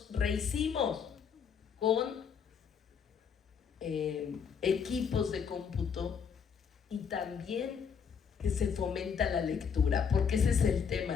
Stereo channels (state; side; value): quieter; right; 6.8 dB